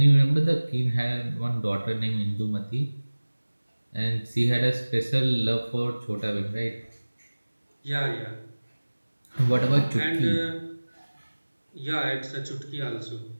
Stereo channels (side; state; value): both; inverted; correlation -1.00